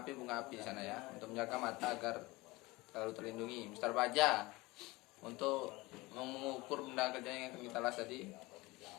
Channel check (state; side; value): quieter; right; 21.9 dB